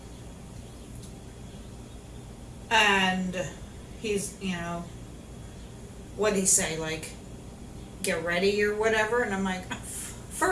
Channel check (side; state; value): both; identical; correlation 1.00